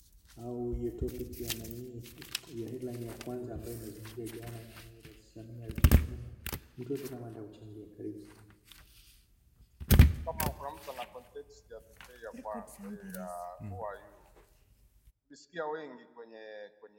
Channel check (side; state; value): both; identical; correlation 1.00